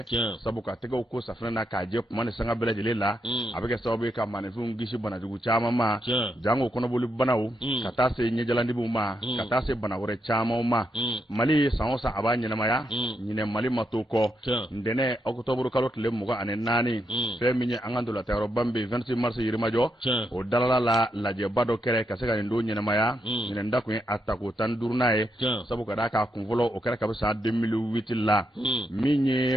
sabu ka tege ko safna na ka je kuma ne sanga bela jele la abeke sabu ka mane fu ngishi bana jugu chama ma jango kono boli banawu kata se nye jalandi bu ma kata se bana wore chama ma mali sa abanya na maya nyine mali matoko ndene octobre kalo tele muga ane nani fe minye angandola tayro bambe 26 mars yirimajo o dalala la je bado kere kasega ndo nyene maya nyene ndako atako tan durnae sabu kada ka kunvolo o kere kabisa 2008 la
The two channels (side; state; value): both; normal; correlation 0.81